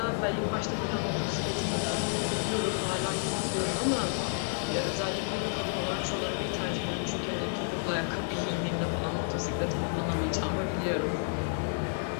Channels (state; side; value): silent; right; 57 dB below the other